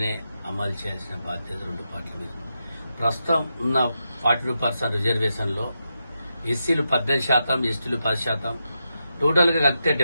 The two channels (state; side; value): inverted; both; correlation -0.87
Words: అమలు చేయాల్సిన బాధ్యత రెండు పార్టీల మీద. ప్రస్తుతం ఉన్న 42% రిజర్వేషన్ లో ఎస్సీలు 18%, ఎస్టీలు 10%, టోటల్ గా కలిపితే